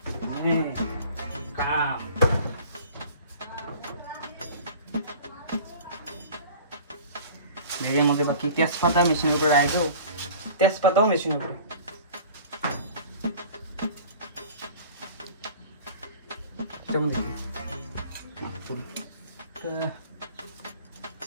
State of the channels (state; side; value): inverted; both; correlation -0.43